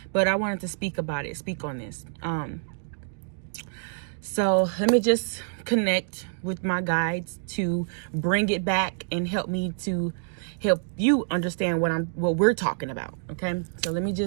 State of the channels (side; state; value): left; silent; digital silence